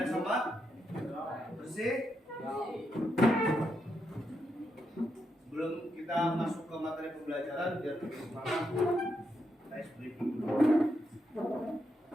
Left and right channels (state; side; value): normal; both; correlation 0.82